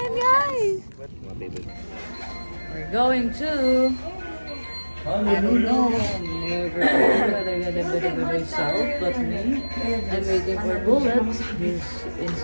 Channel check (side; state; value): both; inverted; correlation -1.00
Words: guys! We're going to... I don't know. Never myself, but me. I'm waiting for bullets. He's